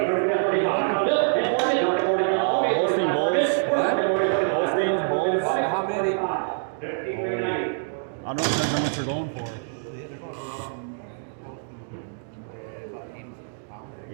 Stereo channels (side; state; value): left; silent; digital silence